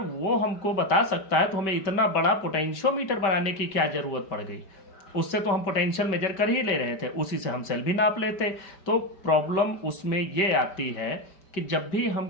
हमको बता सकता है तो हमें इतना बड़ा पोटेंशियोमीटर बनाने की क्या जरूरत पड़ गई। उससे तो हम पोटेंशियल मेजर कर ही ले रहे थे, उसी से हम सेल भी नाप लेते। तो प्रॉब्लम उसमें ये आती है कि जब भी हम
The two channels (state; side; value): late; right; 5.2 ms